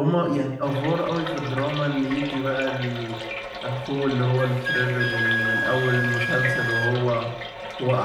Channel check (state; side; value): identical; both; correlation 1.00